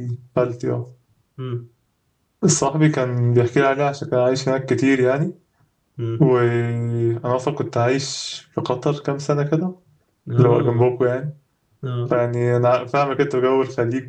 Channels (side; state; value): both; identical; correlation 1.00